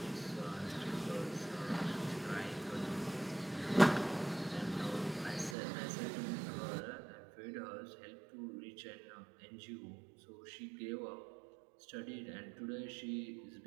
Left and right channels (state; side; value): drops out; left; at 5.6 s